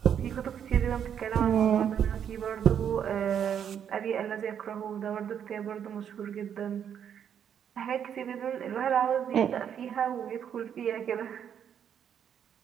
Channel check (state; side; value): quieter; left; 8.6 dB